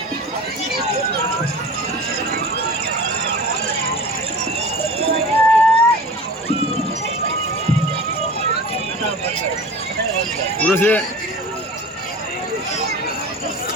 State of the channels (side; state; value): both; normal; correlation 0.37